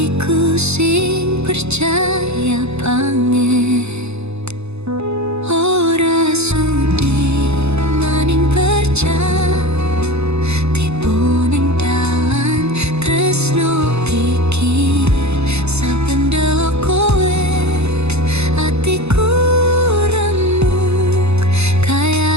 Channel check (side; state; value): left; late; 0.80 ms